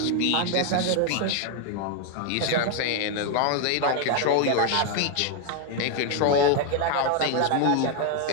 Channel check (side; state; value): both; different; correlation 0.01